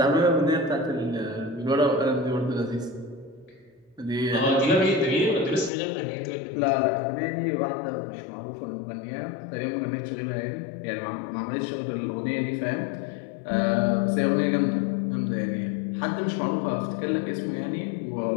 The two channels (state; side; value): drops out; right; at 5.7 s